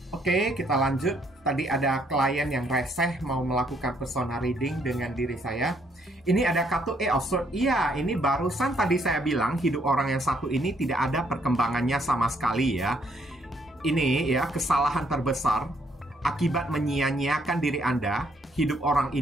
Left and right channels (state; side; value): normal; both; correlation 0.70